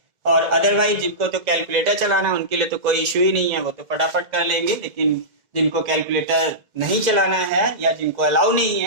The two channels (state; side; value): late; left; 2.0 ms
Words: और अदरवाइज जिनको तो कैलकुलेटर चलाना है उनके लिए तो कोई इश्यू ही नहीं है, वो तो फटाफट कर लेंगे, लेकिन जिनको कैलकुलेटर नहीं चलाना है या जिनको अलाउ नहीं